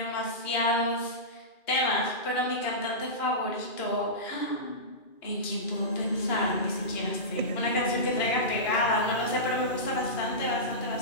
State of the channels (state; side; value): late; right; 2.4 ms